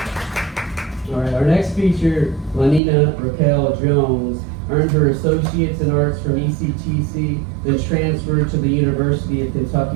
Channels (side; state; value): left; drops out; at 2.8 s